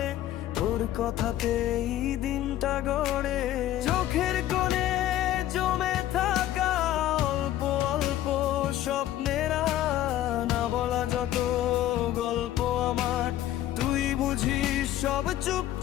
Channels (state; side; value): quieter; right; 13.1 dB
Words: তোর কথাতেই দিনটা গড়ে। চোখের কোণে জমে থাকা অল্প অল্প স্বপ্নের না বলা যত গল্প আমার, তুই বুঝিস সব